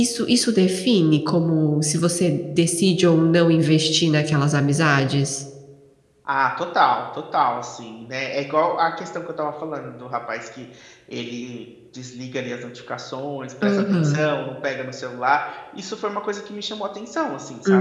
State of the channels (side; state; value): both; identical; correlation 1.00